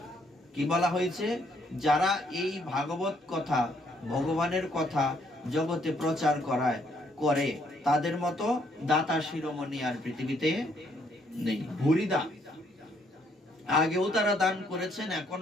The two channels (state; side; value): normal; both; correlation 0.69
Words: কি বলা হয়েছে? যারা এই ভাগবত কথা, ভগবানের কথা জগতে প্রচার করে তাদের মতো দাতা শিরোমণি আর পৃথিবীতে নেই। ভুরিদা, আগেও তারা দান করেছেন,